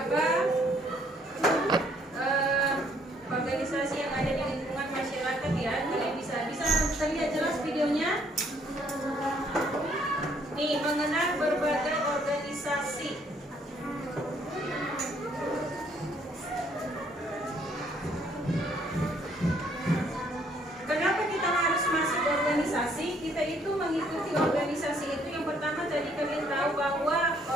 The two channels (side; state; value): both; normal; correlation 0.66